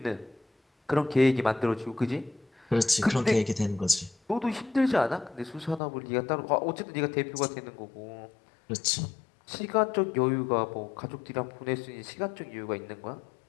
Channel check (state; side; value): drops out; right; at 5.8 s